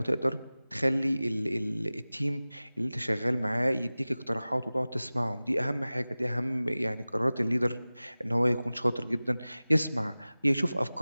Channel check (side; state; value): both; inverted; correlation -0.98